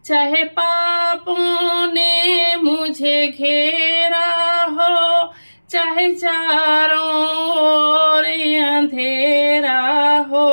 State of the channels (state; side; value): inverted; both; correlation -1.00